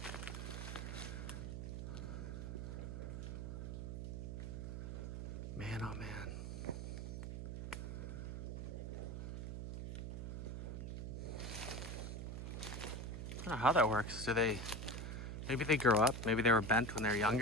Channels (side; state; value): right; noise; hum, 5 dB below the sound